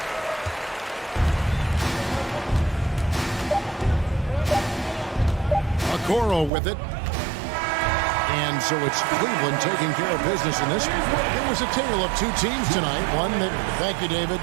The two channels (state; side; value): drops out; left; at 6.5 s